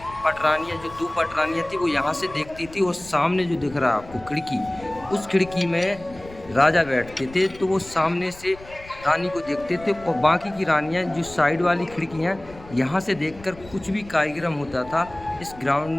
पटरानियाँ, जो 2 पटरानियाँ थी, वो यहाँ से देखती थी। और सामने जो दिख रहा है आपको खिड़की, उस खिड़की में राजा बैठते थे, तो वो सामने से रानी को देखते थे। और बाकी की रानियाँ जो साइड वाली खिड़कियाँ, यहाँ से देखकर कुछ भी कार्यक्रम होता था इस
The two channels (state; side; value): noise; left; rumble, 19 dB below the sound